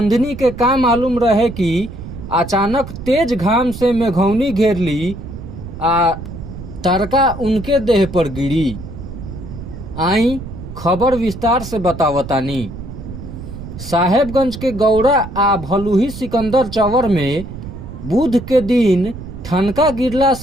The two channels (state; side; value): noise; right; rumble, 11 dB below the sound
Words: के का मालूम रहे कि अचानक तेज घाम से मेघौनी घेर ली आ तड़का उनके देह पर गिरी। आई खबर विस्तार से बतावतानी। साहेबगंज के गौड़ा आ भलुही सिकंदर चवर में बुध के दिन ठनका गिरला